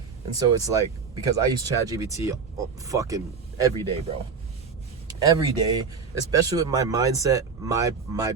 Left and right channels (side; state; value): left; quieter; 5.5 dB